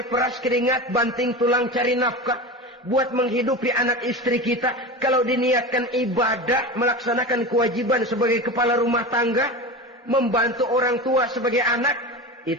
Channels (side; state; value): both; normal; correlation 0.27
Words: peras keringat, banting tulang cari nafkah, buat menghidupi anak istri kita. Kalau diniatkan ibadah, melaksanakan kewajiban sebagai kepala rumah tangga, membantu orang tua sebagai anak,